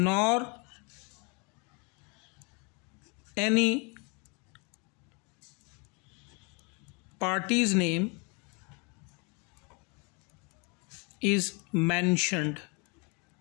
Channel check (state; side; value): quieter; right; 32.2 dB